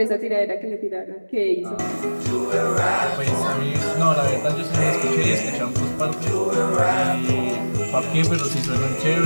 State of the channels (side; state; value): both; inverted; correlation -1.00